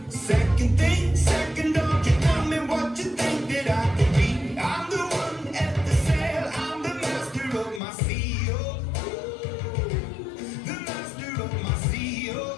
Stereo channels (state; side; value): drops out; right; at 7.8 s